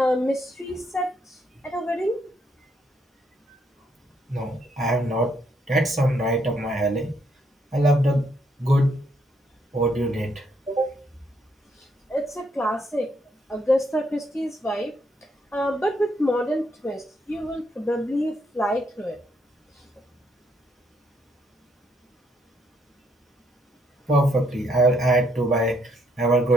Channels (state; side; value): normal; both; correlation 0.73